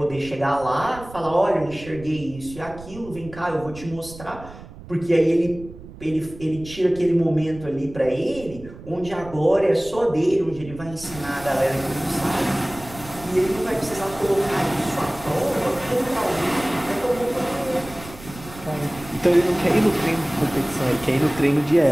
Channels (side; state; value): right; noise; rumble, 16 dB below the sound